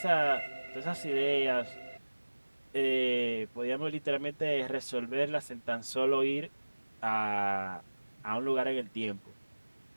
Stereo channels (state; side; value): inverted; both; correlation -1.00